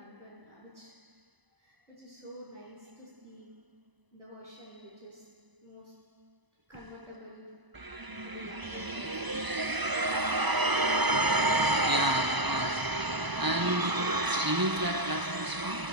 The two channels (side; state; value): left; late; 1.0 ms